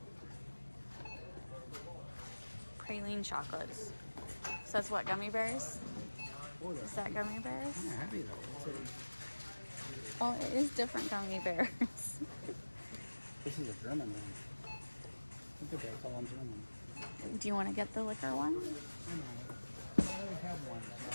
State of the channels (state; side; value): inverted; both; correlation -1.00